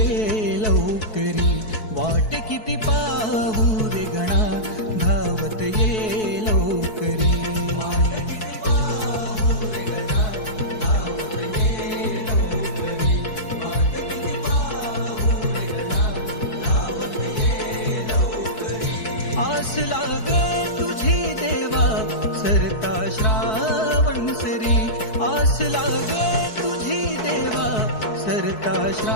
लवकरी. वाट किती पाहू रे गणा, धावत ये लवकरी. आस लागे तुझी देवा सरता श्रावण सरी, आस लागे तुझी देवा सरता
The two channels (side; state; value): right; late; 4.6 ms